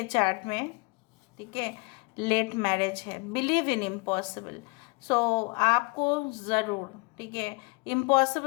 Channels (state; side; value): quieter; right; 29.5 dB